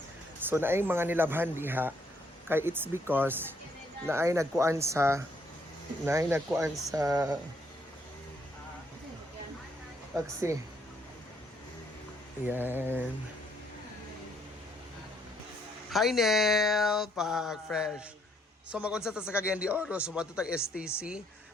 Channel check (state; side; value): normal; both; correlation 0.70